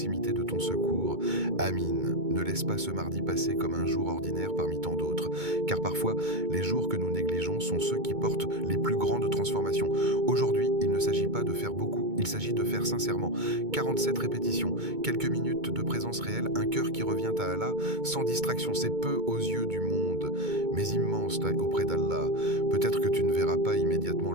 de ton secours. Amin. Ne laisse pas ce mardi passer comme un jour ordinaire parmi tant d'autres, car parfois, les jours que nous négligeons sont ceux qui portent les plus grandes transformations. Aujourd'hui, il ne s'agit pas de faire beaucoup, il s'agit de faire sincèrement. 47 répétitions, quelques minutes de présence réelle, un cœur qui revient à Allah, sans distraction, c'est peu aux yeux du monde, mais immense auprès d'Allah. Peut-être que tu ne verras pas immédiatement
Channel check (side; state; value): left; late; 2.2 ms